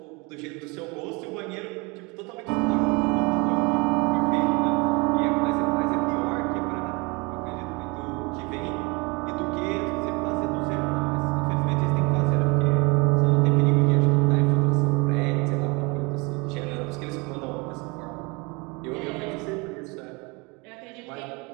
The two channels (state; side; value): quieter; left; 28.0 dB